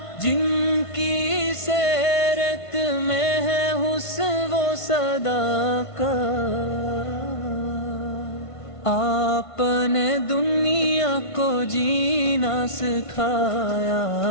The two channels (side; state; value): right; late; 1.5 ms